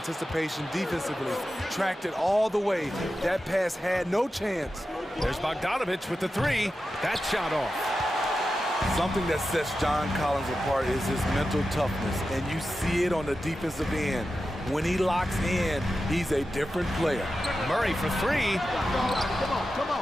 defensively. Tracked it all the way. That pass had no chance. There's Bogdanovic with the 3. That shot off. Something that sets John Collins apart is his mental toughness, and you see it on the defensive end. When he locks in, he's a different player. Murray for 3. Come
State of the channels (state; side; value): normal; both; correlation 0.91